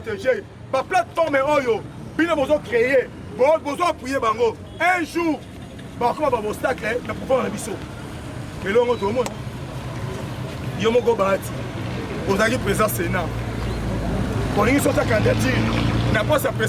Ma plateforme est Oyo. Bien besoin créer. Besoin appuyer Bango. Un jour, comme un obstacle, nous pouvons faire biseau. Mais là, on tout le monde. Yomo Gobat. Vous avez président Sénat. On a une sorte de candidature. N'a pas sa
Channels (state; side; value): identical; both; correlation 1.00